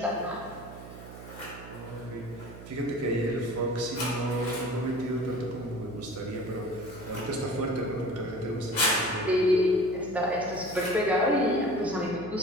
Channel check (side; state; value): right; noise; hum, 14 dB below the sound